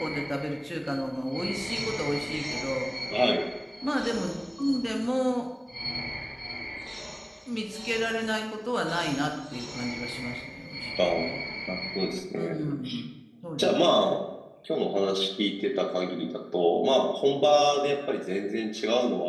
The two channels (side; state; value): both; identical; correlation 1.00